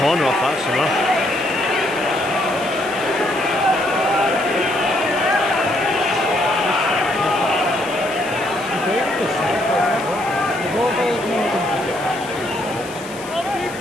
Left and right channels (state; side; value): noise; left; hiss, 17 dB below the sound